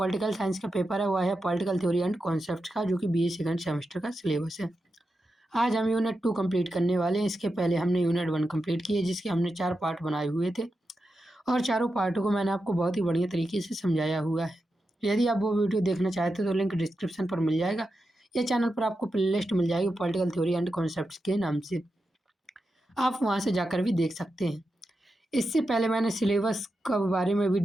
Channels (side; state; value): both; normal; correlation 0.89